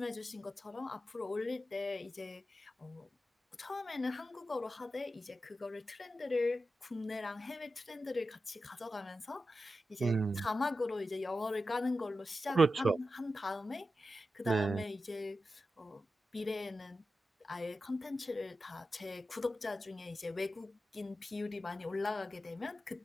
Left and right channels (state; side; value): normal; both; correlation 0.91